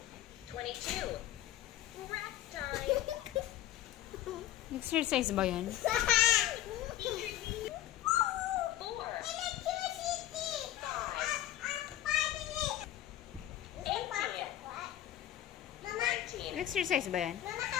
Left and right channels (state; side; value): quieter; right; 13.0 dB